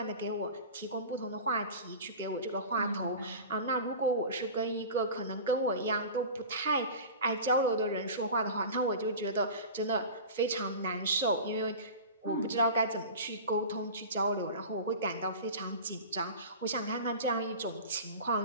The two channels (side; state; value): both; inverted; correlation -0.34